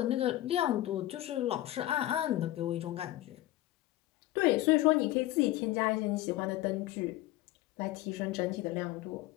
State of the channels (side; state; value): right; quieter; 15.9 dB